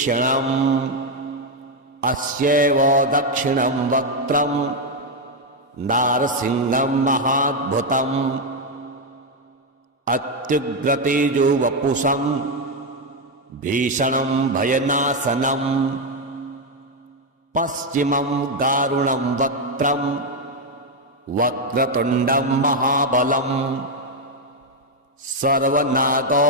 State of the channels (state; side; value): normal; both; correlation 0.03